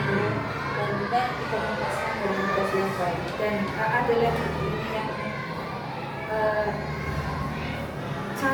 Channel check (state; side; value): identical; both; correlation 1.00